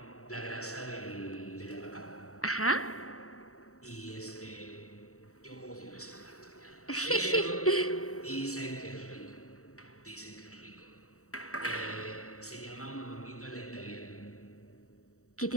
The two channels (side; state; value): right; late; 0.65 ms